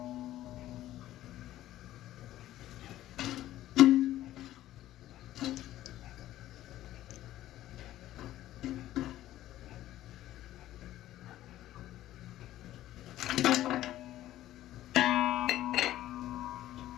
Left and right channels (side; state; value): right; quieter; 14.1 dB